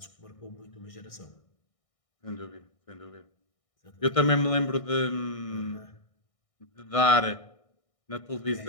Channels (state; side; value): late; right; 1.6 ms